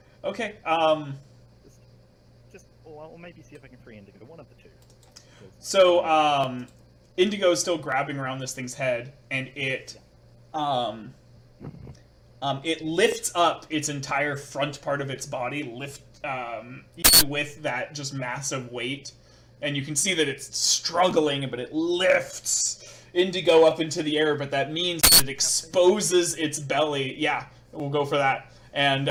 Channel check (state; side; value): identical; both; correlation 1.00